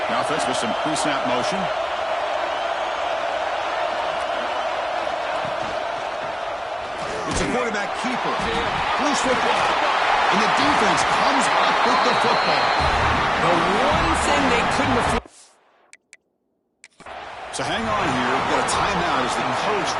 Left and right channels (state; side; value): identical; both; correlation 1.00